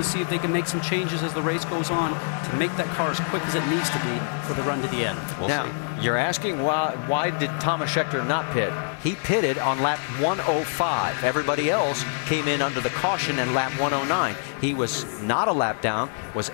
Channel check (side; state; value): right; silent; digital silence